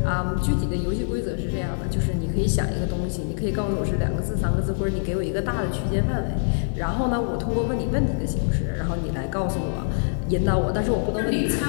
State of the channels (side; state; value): right; silent; digital silence